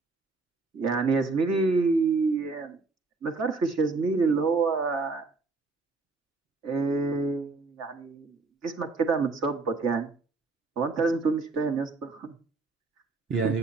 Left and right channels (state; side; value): quieter; left; 3.9 dB